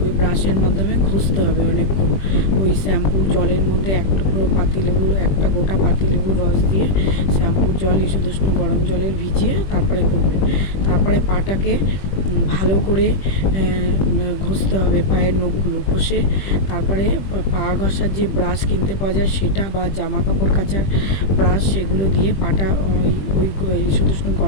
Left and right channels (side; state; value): right; late; 20 ms